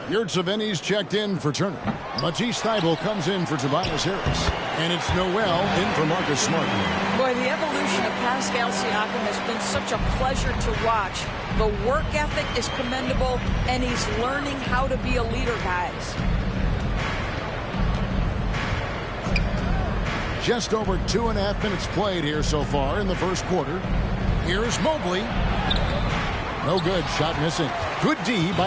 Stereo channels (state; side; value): identical; both; correlation 1.00